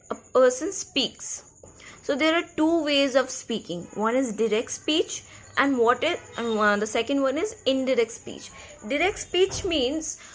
a person speaks. So, there are two ways of speaking. One is direct speech, and the second one is indirect speech. Direct speech means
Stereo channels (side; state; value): both; identical; correlation 1.00